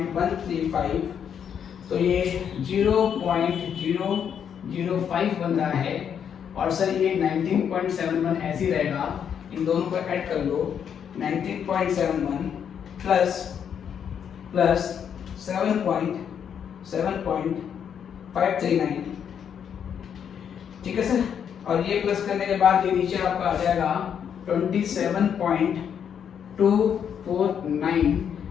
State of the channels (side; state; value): right; quieter; 8.1 dB